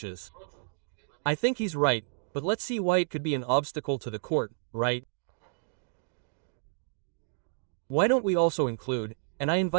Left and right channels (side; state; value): left; silent; digital silence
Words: I think he's right, but let's see why it could be an obstacle to the court, right? Why don't we also include, and I